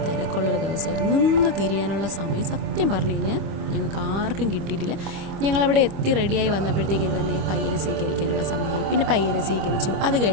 തിരക്കുള്ളൊരു ദിവസമായിരുന്നു. നിന്ന് തിരിയാനുള്ള സമയം സത്യം പറഞ്ഞു കഴിഞ്ഞാൽ ഞങ്ങൾക്ക് ആർക്കും കിട്ടിയിട്ടില്ല. ഞങ്ങളവിടെ എത്തി റെഡിയായി വന്നപ്പോഴത്തേക്കും തന്നെ പയ്യനെ സ്വീകരിക്കാനുള്ള സമയമായി. പിന്നെ പയ്യനെ സ്വീകരിച്ചു. അത്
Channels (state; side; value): late; left; 25 ms